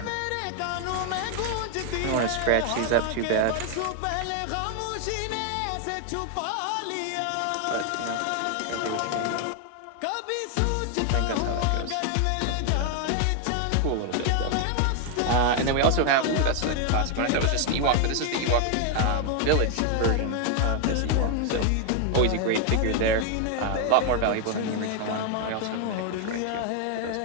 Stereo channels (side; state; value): both; different; correlation 0.00